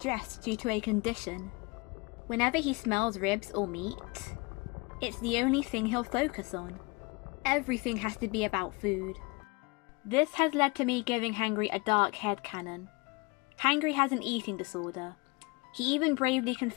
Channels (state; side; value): quieter; right; 27.9 dB